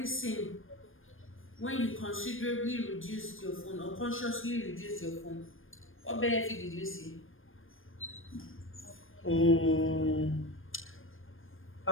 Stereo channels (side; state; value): right; late; 0.59 ms